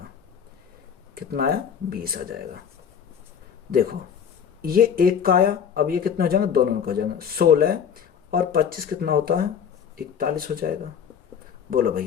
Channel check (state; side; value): quieter; right; 7.7 dB